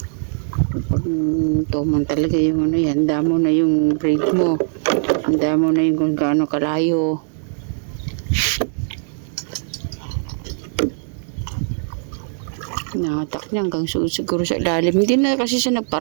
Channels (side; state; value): left; silent; digital silence